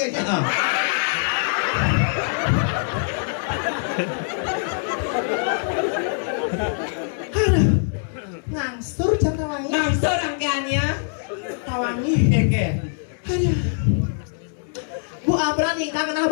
kayaknya. Ngangsur jam tawangi. Nangsur rangkaiannya. Tawangi. Oke. Aduh. Bu Abra nikah kenal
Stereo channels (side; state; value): right; silent; digital silence